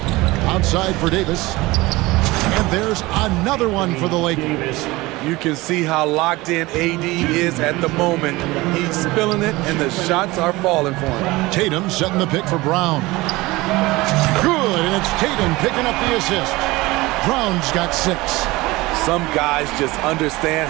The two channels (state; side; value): quieter; left; 20.7 dB